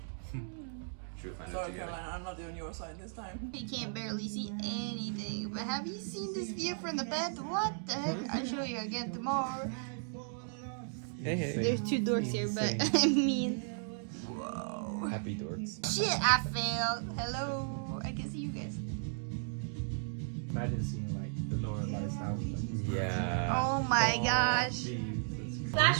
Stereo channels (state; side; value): silent; left; digital silence